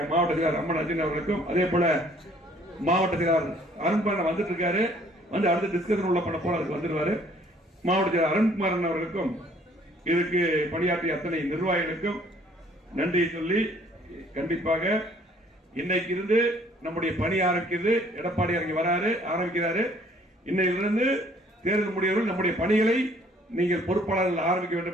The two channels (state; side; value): normal; both; correlation 0.59